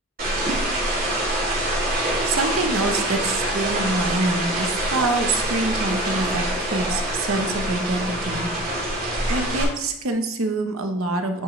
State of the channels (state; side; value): normal; both; correlation 0.38